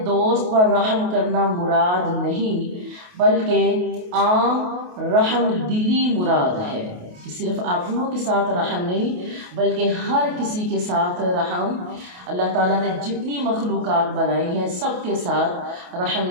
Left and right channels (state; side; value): late; left; 28 ms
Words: دوست پر رحم کرنا مراد نہیں بلکہ عام رحم دلی مراد ہے، کہ صرف اپنوں کے ساتھ رحم نہیں بلکہ ہر کسی کے ساتھ رحم۔ اللہ تعالیٰ نے جتنی مخلوقات بنائی ہیں سب کے ساتھ رحم